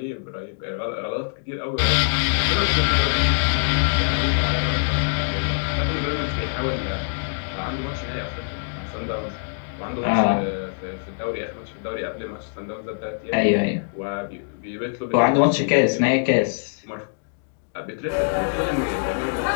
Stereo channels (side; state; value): right; silent; digital silence